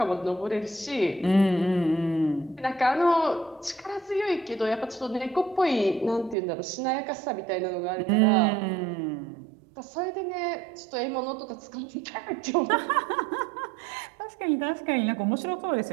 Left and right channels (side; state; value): left; drops out; at 6.4 s